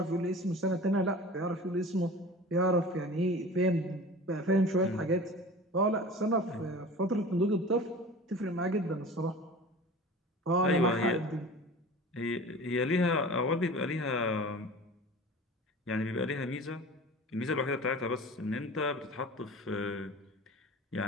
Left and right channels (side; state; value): both; normal; correlation 0.38